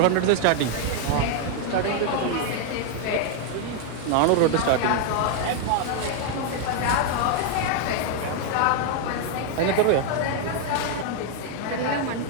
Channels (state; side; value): different; both; correlation 0.00